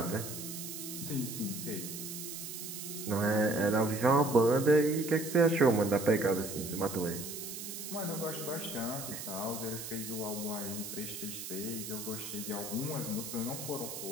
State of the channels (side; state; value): right; noise; hiss, 8 dB below the sound